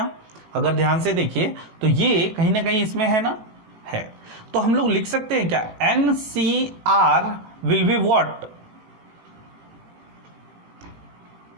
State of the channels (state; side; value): late; left; 17 ms